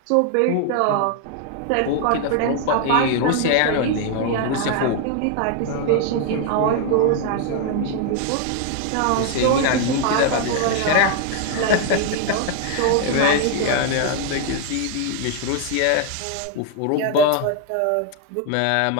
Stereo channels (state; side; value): different; both; correlation 0.00